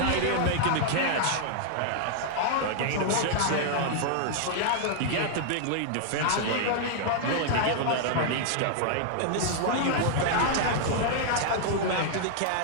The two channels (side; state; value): both; different; correlation -0.01